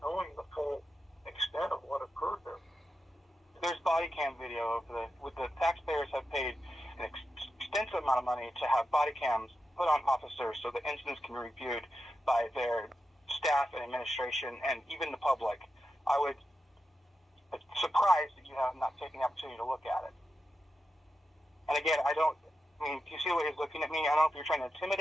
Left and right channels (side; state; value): both; normal; correlation 0.89